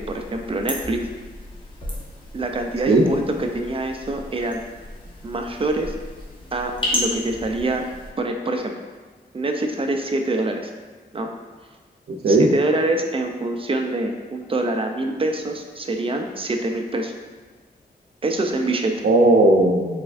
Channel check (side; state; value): both; normal; correlation 0.55